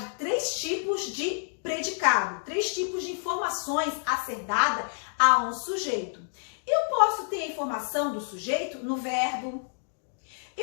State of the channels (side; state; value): right; silent; digital silence